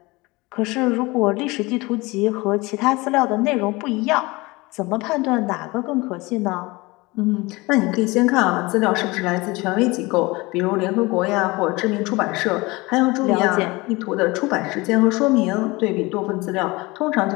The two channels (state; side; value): quieter; right; 23.1 dB